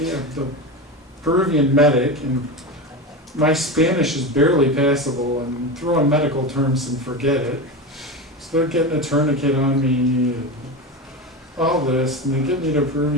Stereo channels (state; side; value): normal; both; correlation 0.22